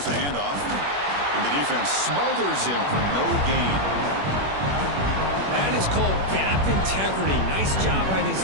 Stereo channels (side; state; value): left; late; 21 ms